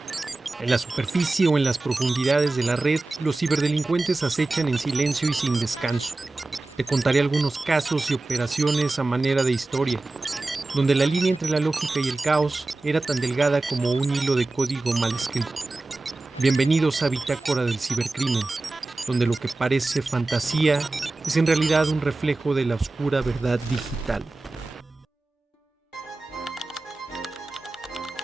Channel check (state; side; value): quieter; left; 3.2 dB